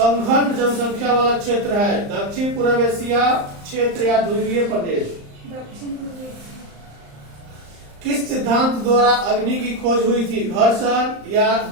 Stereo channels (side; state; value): left; late; 35 ms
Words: जनसंख्या वाला क्षेत्र है? दक्षिण पूर्व एशिया क्षेत्र या ध्रुवीय प्रदेश? किस सिद्धांत द्वारा अग्नि की खोज हुई थी? घर्षण या